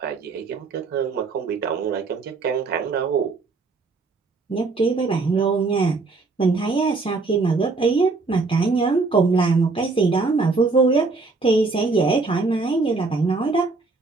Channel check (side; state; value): left; quieter; 4.0 dB